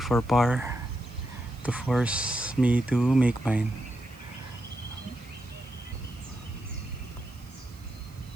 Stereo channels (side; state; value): right; noise; hiss, 27 dB below the sound